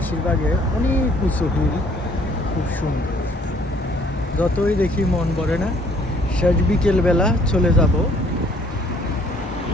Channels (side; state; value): both; normal; correlation 0.60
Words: অনেক উঁচু হিল, খুব সুন্দর। যতই দেখি মন ভরে না। শেষ বিকেলবেলা চলে যাব।